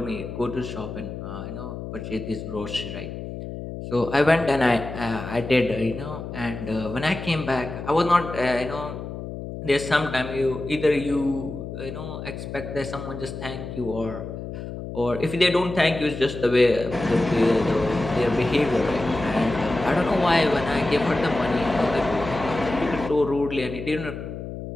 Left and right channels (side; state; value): left; noise; hum, 8 dB below the sound